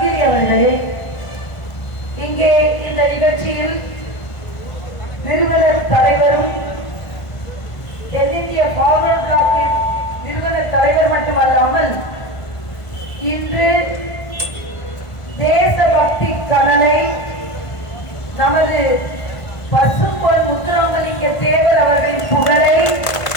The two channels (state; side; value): late; right; 1.5 ms